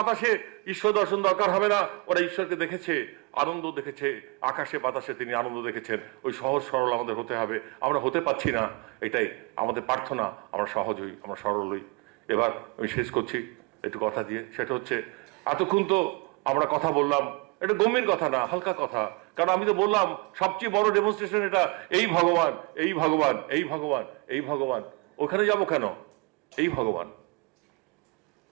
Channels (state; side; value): quieter; left; 27.5 dB